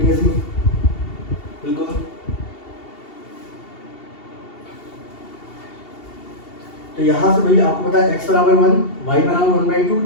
सी, बिल्कुल। तो यहाँ से भाई आपको पता है x बराबर 1 y बराबर 1/2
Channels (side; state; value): right; late; 2.7 ms